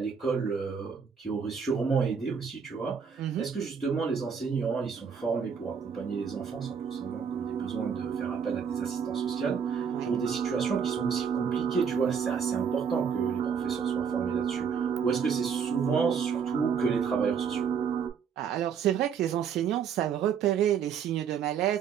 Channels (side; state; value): left; quieter; 6.9 dB